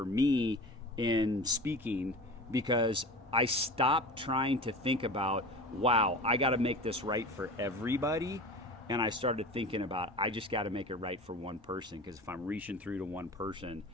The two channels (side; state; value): both; normal; correlation 0.34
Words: me in speaking, because I stopped trying to think about, wow, I got to make this right for everybody. And I started thinking about, I just got to make it right for one person, because if I'm reaching through to one person,